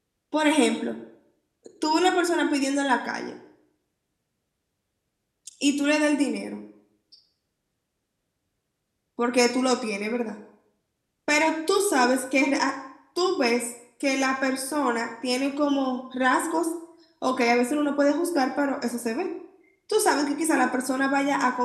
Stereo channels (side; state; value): both; identical; correlation 1.00